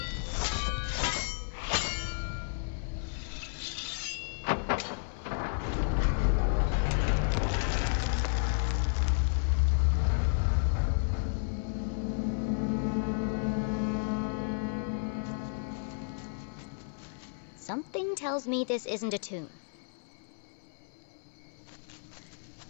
Something tells me this isn't a tomb.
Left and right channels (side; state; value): right; silent; 56 dB below the other